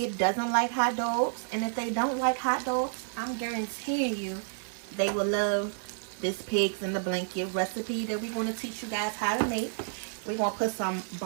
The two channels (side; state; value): left; silent; 58 dB below the other